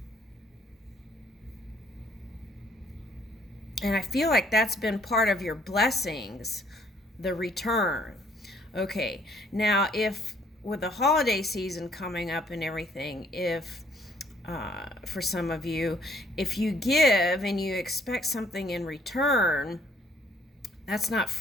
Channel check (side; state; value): both; normal; correlation 0.63